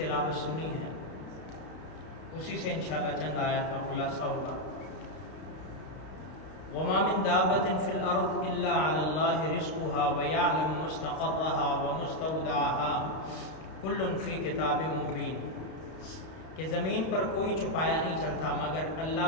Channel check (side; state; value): right; late; 32 ms